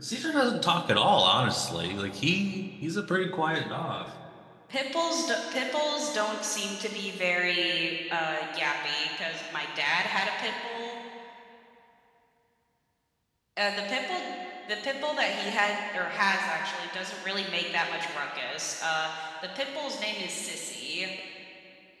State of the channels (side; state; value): both; identical; correlation 1.00